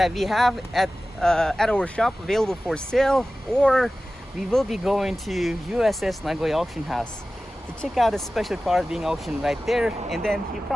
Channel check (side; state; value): both; normal; correlation 0.96